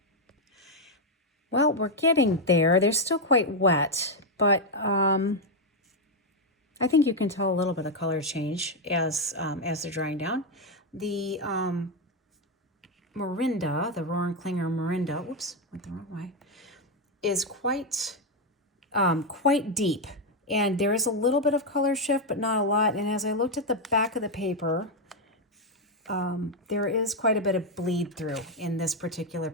Well, we're getting there. They're still quite wet, but I think you can tell a little bit of color change as they're drying down. The Morinda, the Rohrenklinger Morinda, whoops, went the wrong way, is quite deep. And there is a little bit of color shift, but not a lot. And as I looked at the back of the paper, there is quite a bit of bleed through in this particular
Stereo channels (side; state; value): both; normal; correlation 0.03